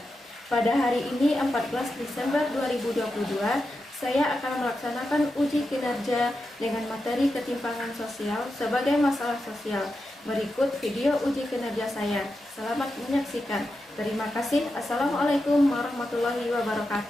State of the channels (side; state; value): both; normal; correlation 0.89